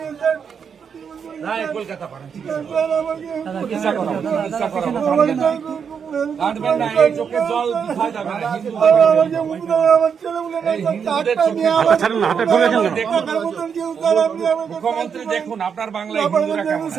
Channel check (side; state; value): left; quieter; 6.9 dB